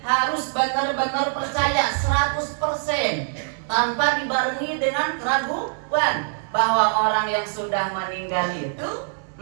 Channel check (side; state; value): left; silent; digital silence